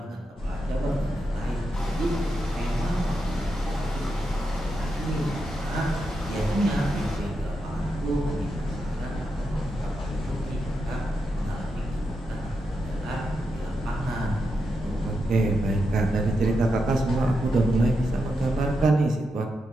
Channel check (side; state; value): both; normal; correlation 0.86